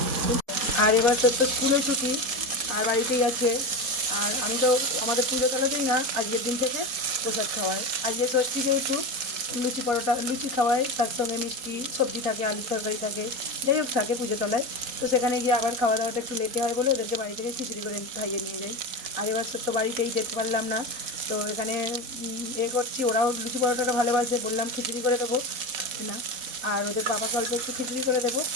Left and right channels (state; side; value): late; left; 4.2 ms